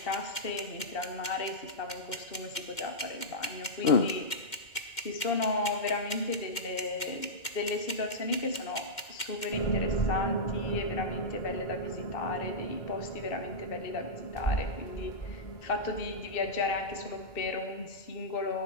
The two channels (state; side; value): late; right; 2.1 ms